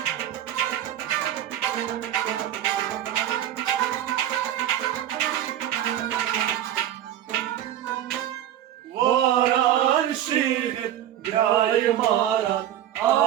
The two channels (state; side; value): quieter; left; 11.7 dB